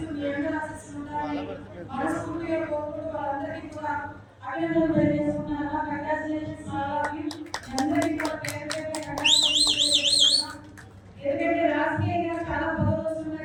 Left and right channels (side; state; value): both; identical; correlation 1.00